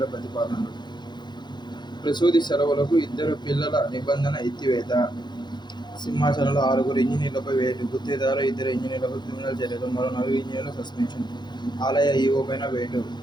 ప్రతిపాదనలు. ప్రసూతి సెలవులకు 2 పిల్లల నిబంధన ఎత్తివేత. సింహాచలంలో 6 ఇంజనీర్లపై వేటు. గుత్తేదారు 2 ఇంజనీర్లపై క్రిమినల్ చర్యలు. మరో 4 ఇంజనీర్ల సస్పెన్షన్. ఆలయ ఈవో పైన వేటు.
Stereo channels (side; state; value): right; late; 0.21 ms